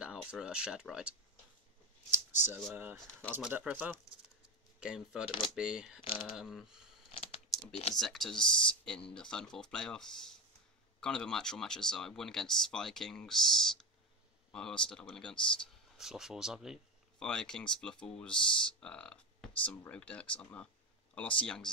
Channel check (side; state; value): both; normal; correlation 0.18